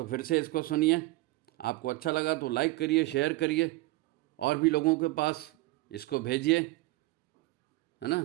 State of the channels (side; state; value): left; quieter; 20.1 dB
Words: फिर से इसको सुनिए। आपको अच्छा लगा तो लाइक करिए, शेयर करिए और भी लोगों के पास इसको भेजिए, है ना।